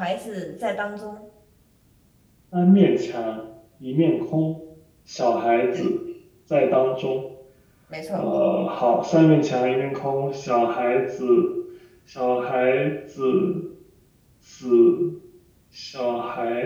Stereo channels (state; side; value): identical; both; correlation 1.00